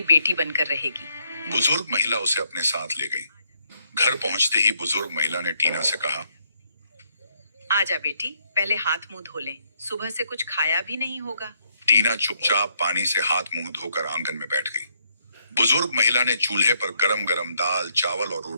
बेटी बनकर रहेगी। बुजुर्ग महिला उसे अपने साथ ले गई। घर पहुंचते ही बुजुर्ग महिला ने टीना से कहा, आजा बेटी, पहले हाथ मुंह धो लें। सुबह से कुछ खाया भी नहीं होगा। टीना चुपचाप पानी से हाथ मुंह धोकर आंगन में बैठ गई। बुजुर्ग महिला ने चूल्हे पर गरम गरम दाल, चावल और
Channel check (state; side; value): inverted; both; correlation -0.73